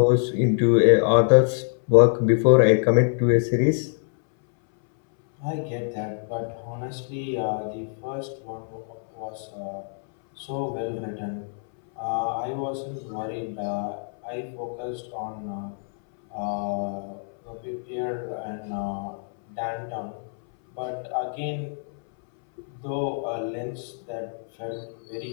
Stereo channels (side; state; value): right; silent; 62 dB below the other